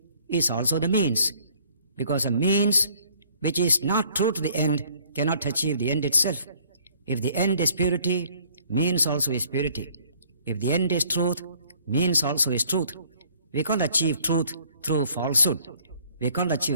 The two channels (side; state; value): both; inverted; correlation -0.59